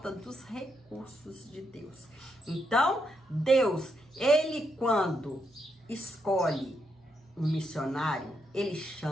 dos recursos de Deus. Então, Deus, ele quando escolhe um missionário, ele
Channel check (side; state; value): both; normal; correlation 0.80